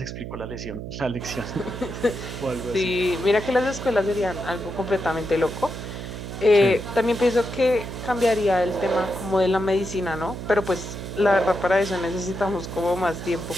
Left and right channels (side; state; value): right; noise; hum, 8 dB below the sound